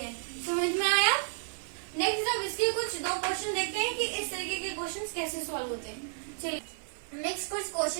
समझ में आया। नेक्स्ट अब इसके कुछ दो क्वेश्चन देखते हैं कि इस तरीके के क्वेश्चन कैसे सॉल्व होते हैं। चलिए नेक्स्ट कुछ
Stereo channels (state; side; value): silent; left; 57 dB below the other